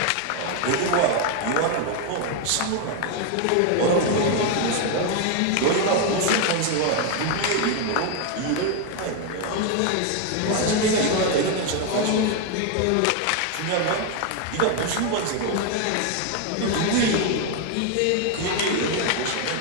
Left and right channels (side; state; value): both; different; correlation 0.01